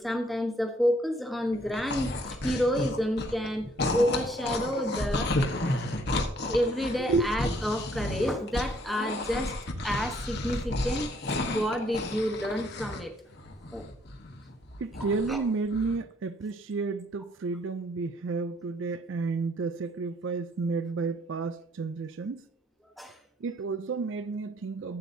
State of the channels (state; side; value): normal; both; correlation 0.65